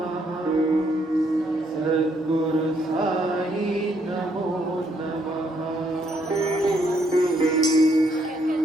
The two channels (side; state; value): both; normal; correlation 0.72